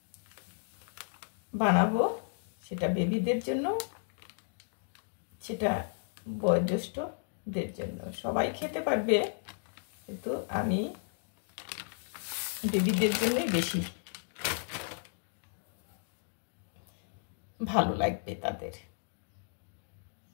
বানাবো, সেটা বেবিদের জন্য, সেটা বয়োজ্যেষ্ঠদের জন্য। সবাই খেতে পারবে, কিন্তু আমি বেবিদের জন্যই বেশি ভালো লাগবে তাদের।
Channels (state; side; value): silent; right; digital silence